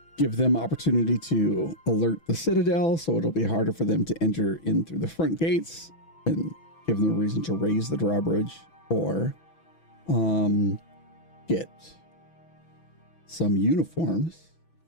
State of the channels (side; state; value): right; late; 6.1 ms